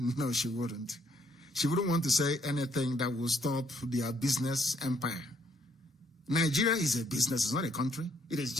No, she wouldn't. She wouldn't want to say anything that will stop their business empire. Nigeria is a business, it's not a country. It is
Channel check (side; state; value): both; normal; correlation 0.69